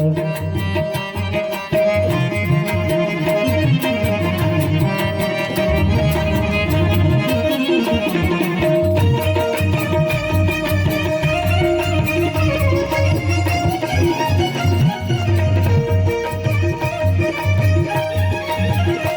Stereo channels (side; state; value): both; identical; correlation 1.00